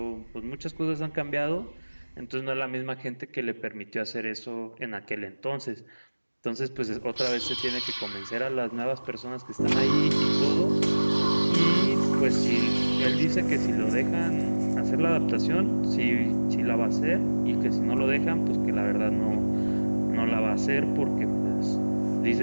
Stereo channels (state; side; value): inverted; both; correlation -1.00